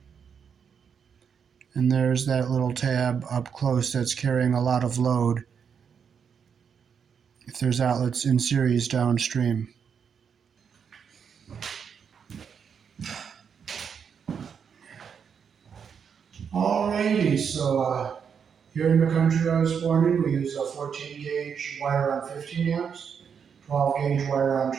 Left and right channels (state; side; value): quieter; left; 7.0 dB